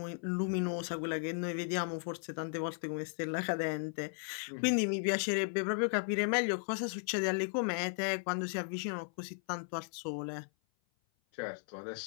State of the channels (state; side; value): silent; right; 54 dB below the other